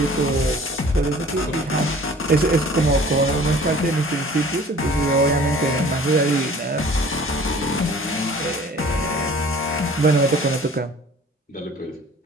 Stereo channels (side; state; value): both; normal; correlation 0.48